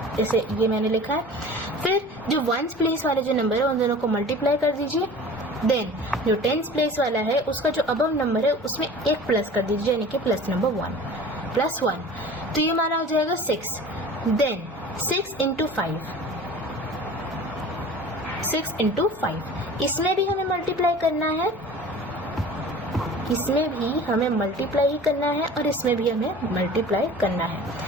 जैसे ये मैंने लिखा है. फिर जो वंस प्लेस वाले जो नंबर है उन दोनों को मल्टीप्लाई कर दीजिए. देन जो टेंस प्लेस वाला है उसका जो अबव नंबर है उसमें एक प्लस कर दीजिए, यानी कि प्लस नंबर 1, प्लस 1. तो ये हमारा हो जाएगा 6. Then 6 into 5. 6 into 5. इसमें भी हमें मल्टीप्लाई करना है, इसमें भी हमें मल्टीप्लाई ही करना है, और इसमें भी हमें मल्टीप्लाई करना है.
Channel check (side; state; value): both; normal; correlation 0.41